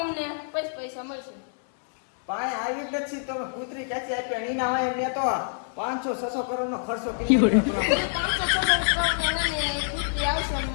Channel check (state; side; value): silent; right; 61 dB below the other